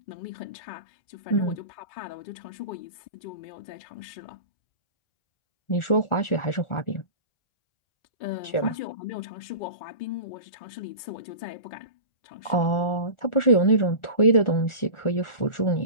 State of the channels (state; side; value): late; right; 1.4 ms